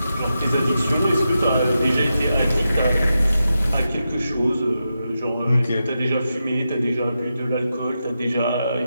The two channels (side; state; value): both; inverted; correlation -0.88